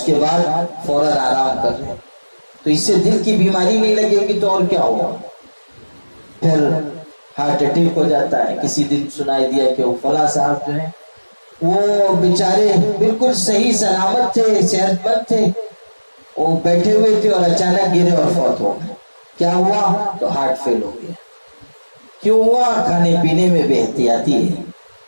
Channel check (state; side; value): inverted; both; correlation -1.00